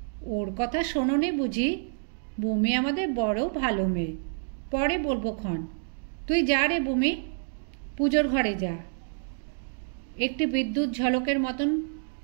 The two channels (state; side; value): silent; left; digital silence